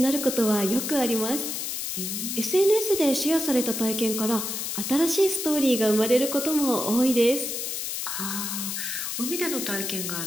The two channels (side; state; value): left; noise; hiss, 3 dB below the sound